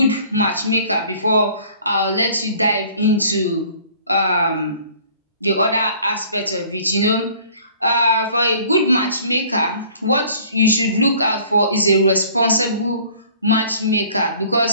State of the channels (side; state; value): both; inverted; correlation -0.53